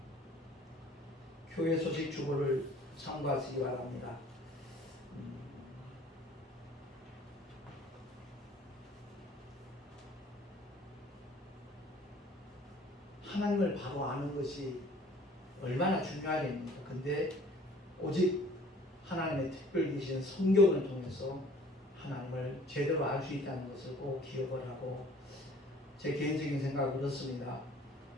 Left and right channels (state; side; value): normal; both; correlation 0.52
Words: 교회 소식 주보를 참고하시기 바랍니다. 하나님을 바로 아는 것이 얼마나 중요하겠습니까? 근데 오직 하나님의 특별 계신 성경을 통해서 하나님을 제대로 알 수 있다는 것을 꼭 기억을 하고, 제 개인적인 생각은 그렇습니다.